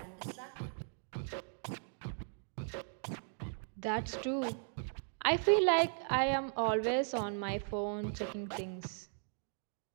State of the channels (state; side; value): silent; left; 53 dB below the other